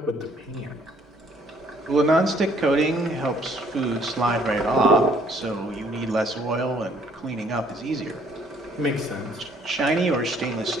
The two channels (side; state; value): both; normal; correlation 0.62